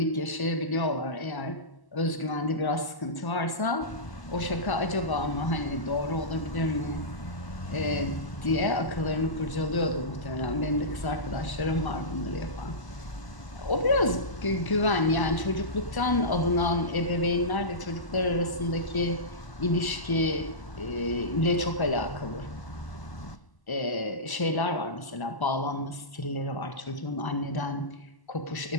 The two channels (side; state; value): right; late; 1.0 ms